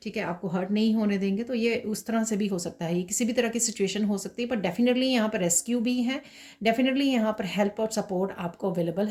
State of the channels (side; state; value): both; identical; correlation 1.00